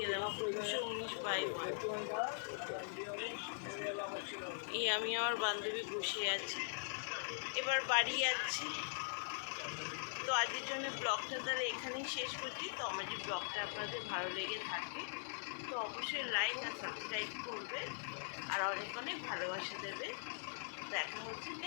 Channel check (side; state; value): right; silent; digital silence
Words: 219 বাই 1। এই আমি আমার বান্ধবী বসে আছি, এবার বাড়ি যাচ্ছি। তো আজকের জন্য ব্লগটা তাহলে এখানেই শেষ করছি। তো আমার যে ব্লগটা আপনাদের ভালো লেগে থাকে তো অবশ্যই লাইক আর সাবস্ক্রাইব করবে, আর অনেক অনেক ভালোবাসা দেবে। দেখা হচ্ছে